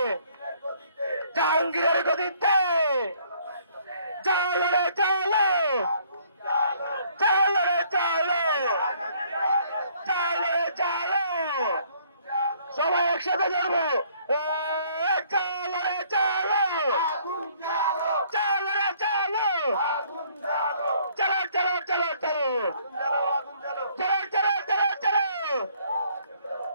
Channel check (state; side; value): inverted; both; correlation -0.62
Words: জাহাঙ্গীরের গদিতে জ্বালো রে জ্বালো, জ্বালো রে জ্বালো, জ্বালো রে জ্বালো, সবাই একসাথে জ্বলবো। জ্বালো রে জ্বালো, জ্বালো রে জ্বালো, চলো চলো চলো চলো, চলো চলো চলো চলো,